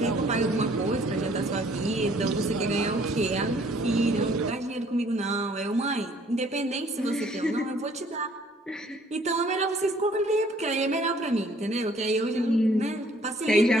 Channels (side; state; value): both; normal; correlation 0.60